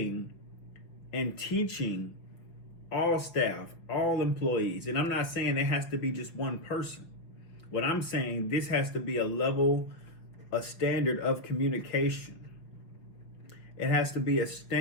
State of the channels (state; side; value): late; right; 6.0 ms